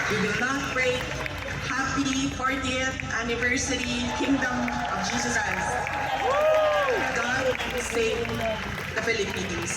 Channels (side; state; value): both; identical; correlation 1.00